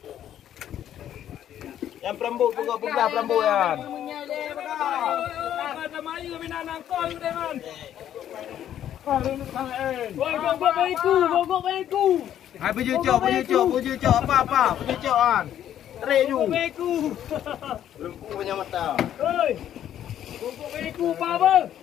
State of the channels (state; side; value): quieter; right; 10.8 dB